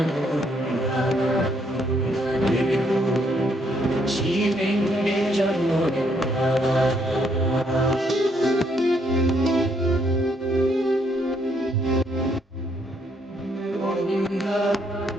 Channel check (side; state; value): both; normal; correlation 0.71